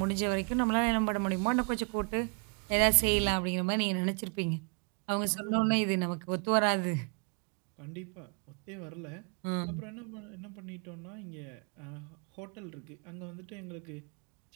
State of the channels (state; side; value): quieter; left; 39.6 dB